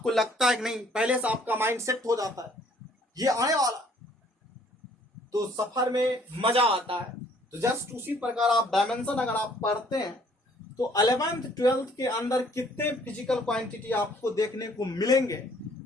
लगता है कि नहीं, पहले से आपका माइंड सेट हो जाता है ये आने वाला, तो सफर में मजा आता है। तो जस्ट उसी प्रकार आप डायमेंशन अगर आप पढ़ते हैं तो 11th 12th के अंदर कितने फिजिकल क्वांटिटी आपको देखने को मिलेंगे,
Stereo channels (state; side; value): normal; both; correlation 0.60